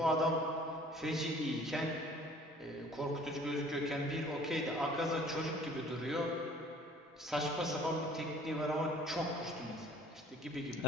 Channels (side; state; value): both; normal; correlation 0.52